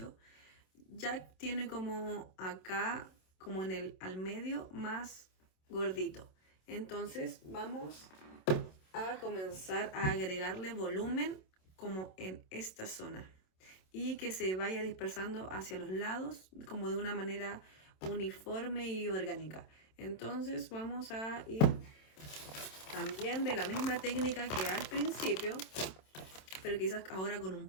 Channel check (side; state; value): right; late; 27 ms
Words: Jack tiene como acá, como al medio, más gordito. Entonces, vamos a comenzar a agregarle volumen como en esta zona y que se vaya dispersando hacia los lados como de una manera uniforme y orgánica. Entonces vamos a ir también de la misma técnica que al principio, pero quizás ahora con un